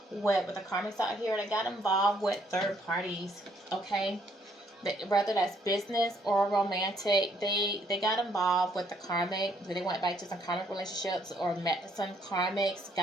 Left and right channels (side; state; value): both; normal; correlation 0.68